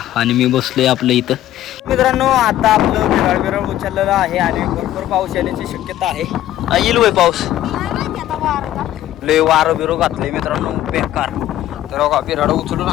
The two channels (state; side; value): quieter; right; 13.2 dB